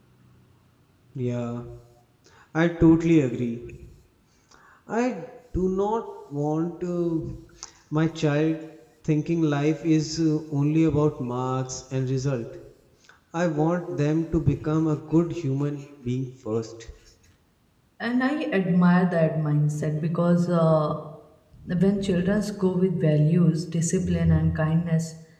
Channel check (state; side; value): identical; both; correlation 1.00